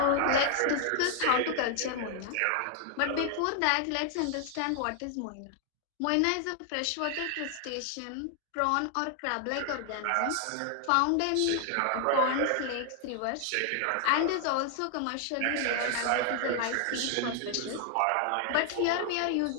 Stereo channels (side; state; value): both; different; correlation 0.00